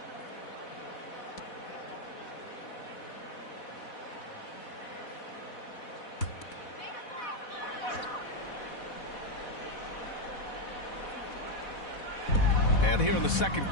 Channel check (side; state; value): right; late; 4.1 ms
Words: And here in the second